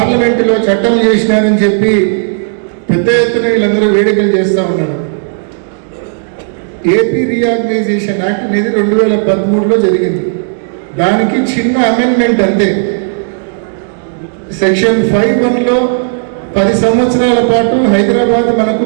చట్టం చేసినారని చెప్పి పెద్ద ఎత్తున వీళ్ళందరూ వేడుకలు చేస్తూ ఉన్నారు. ఏపీ రీఆర్గనైజేషన్ యాక్ట్ అనేది 2013లో జరిగింది. దానికి చిన్న అమెండ్మెంట్ అంతే. సెక్షన్ 5(1)లో 10 సంవత్సరాల పాటు హైదరాబాద్ మనకు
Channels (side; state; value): left; silent; digital silence